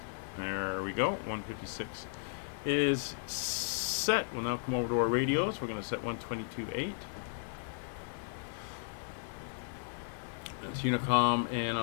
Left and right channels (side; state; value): right; silent; 54 dB below the other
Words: There we go. 156 is set. We'll now come over to our radios. We're going to set 122.8. That's Unicom, and